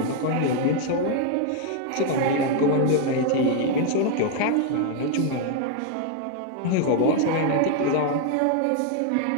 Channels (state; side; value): different; both; correlation 0.00